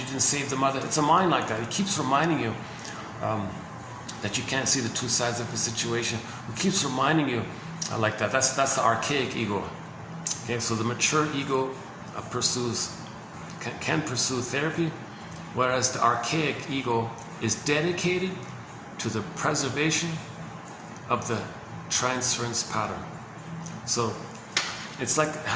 didn't save the mother. It's a mind like that. It keeps reminding you that you can't see the two sides of the situation. It keeps reminding you like that. That's the archaic ego. Okay, so the mature ego can pursue therapy, whereas the archaic ego is dedicated to the preservation of the transference pattern. So it's like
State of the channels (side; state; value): both; identical; correlation 1.00